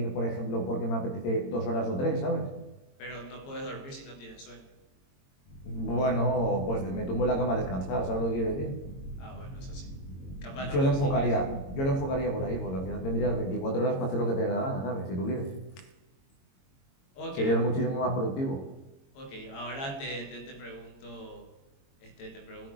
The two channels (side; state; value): right; late; 22 ms